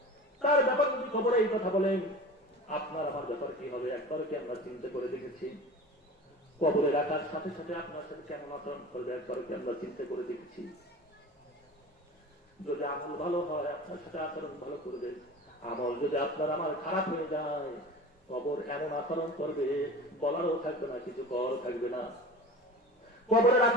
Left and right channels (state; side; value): normal; both; correlation 0.36